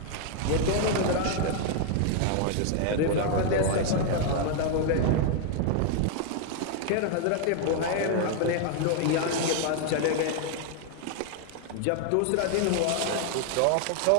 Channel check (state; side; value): different; both; correlation 0.00